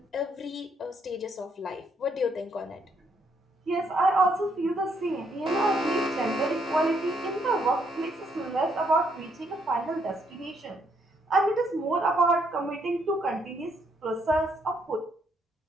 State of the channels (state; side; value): normal; both; correlation 0.72